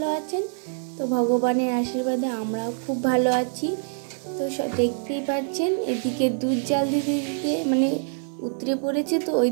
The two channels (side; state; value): left; silent; 60 dB below the other